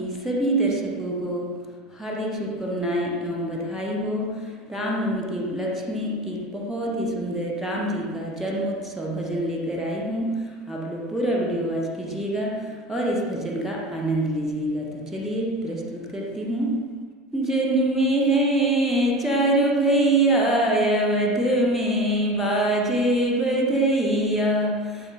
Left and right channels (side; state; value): both; normal; correlation 0.32